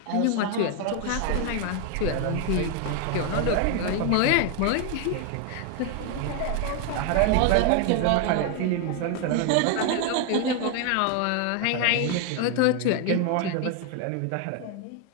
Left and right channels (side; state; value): both; different; correlation 0.01